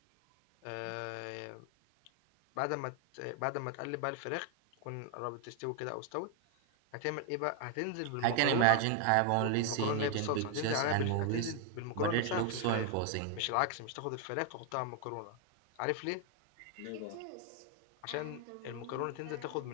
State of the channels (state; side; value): different; both; correlation 0.00